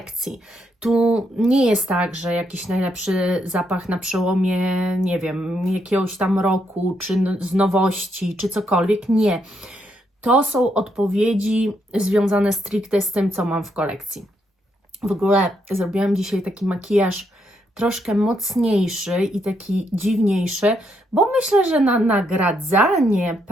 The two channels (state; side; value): normal; both; correlation 0.77